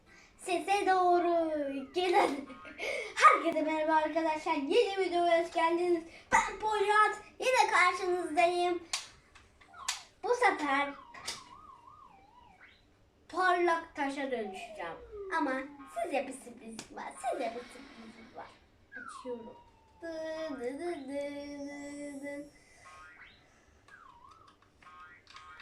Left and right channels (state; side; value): identical; both; correlation 1.00